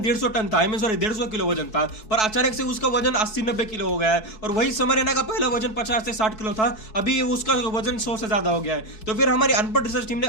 150 टन था, 150 किलो वजन था, पर अचानक से उसका वजन 80-90 किलो हो गया है। और वही समर एना का पहला वजन 50 से 60 किलो था, अभी उसका वजन 100 से ज्यादा हो गया है। तो फिर हमारी अनपढ़ रिसर्च टीम ने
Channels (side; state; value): right; late; 4.6 ms